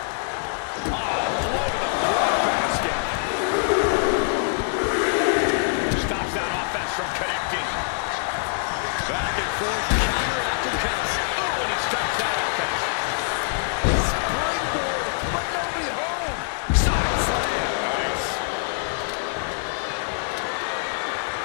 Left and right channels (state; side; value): silent; right; digital silence